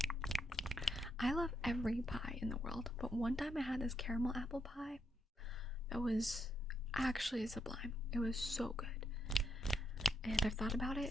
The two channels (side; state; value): both; normal; correlation 0.79